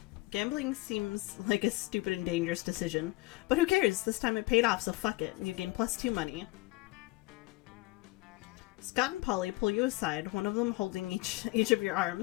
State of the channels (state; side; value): quieter; right; 22.4 dB